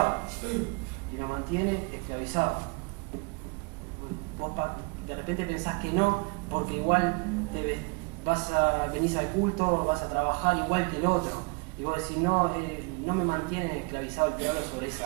y nos mantiene esclavizados. Vos de repente pensás que no, porque igual venís al culto, vas a trabajar igual que el otro. Y vos decís, no me mantiene esclavizado el teólogo sobre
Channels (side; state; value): left; quieter; 30.4 dB